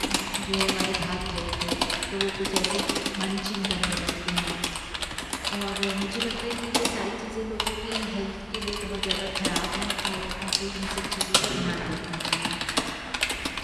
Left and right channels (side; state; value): both; identical; correlation 1.00